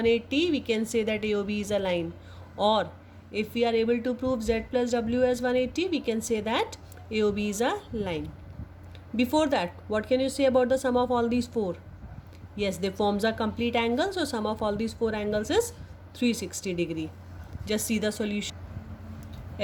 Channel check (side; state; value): both; identical; correlation 1.00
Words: we can say that AOB is a line, or if we are able to prove z plus w as 180 we can say that AOB is a line. Before that, what can you say about the sum of all these 4? Yes, they forms a complete angle, so sum of all these 4 angles is 360 degree. Just see the solution.